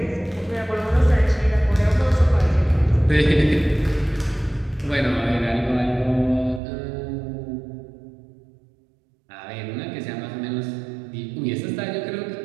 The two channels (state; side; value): drops out; left; at 6.6 s